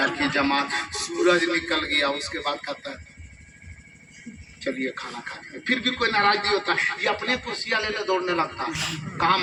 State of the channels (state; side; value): identical; both; correlation 1.00